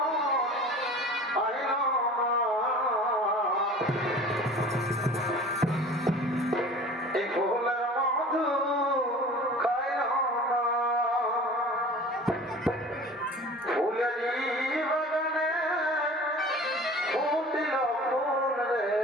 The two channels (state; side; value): normal; both; correlation 0.42